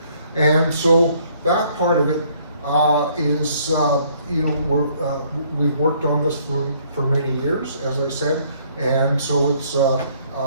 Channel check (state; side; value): inverted; both; correlation -0.63